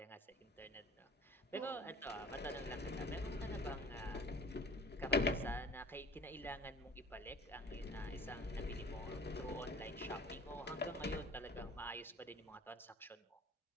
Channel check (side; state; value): both; normal; correlation 0.47